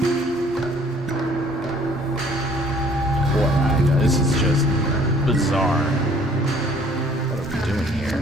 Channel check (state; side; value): normal; both; correlation 0.57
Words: This is just bizarre. What are we doing